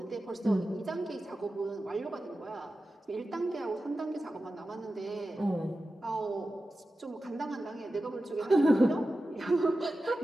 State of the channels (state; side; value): normal; both; correlation 0.93